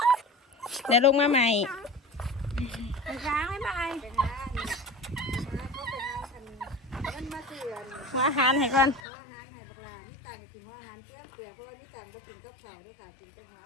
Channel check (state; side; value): drops out; right; at 9.0 s